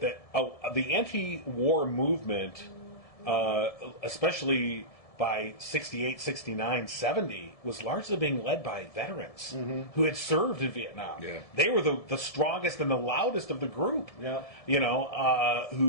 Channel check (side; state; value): right; late; 1.7 ms